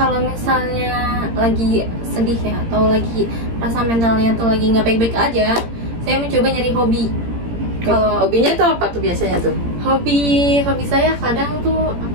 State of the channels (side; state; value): left; late; 17 ms